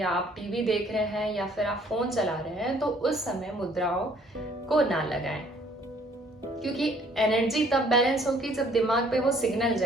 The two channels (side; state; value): both; normal; correlation 0.60